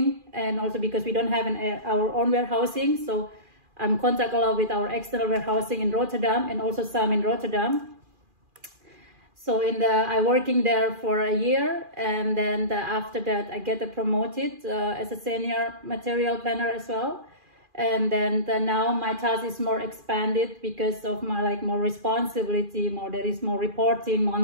and also because we don't have our own warehousing, so I'm contact a lot with our external warehousing in Rotterdam and also some in Rotterdam. So I working there for a year, and then after that I get promoted as a senior material planner as well. And then now my task is more expanded because of my more responsibility, there is more reporting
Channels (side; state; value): left; late; 2.4 ms